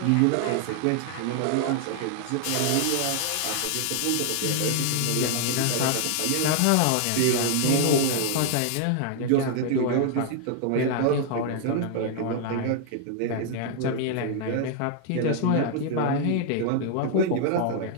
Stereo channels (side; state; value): both; different; correlation 0.00